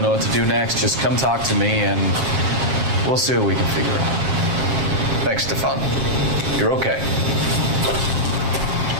know what to do next, just come talk to me and we'll see what we can figure out. Thanks, Stefan. You're okay.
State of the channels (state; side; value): late; left; 7.5 ms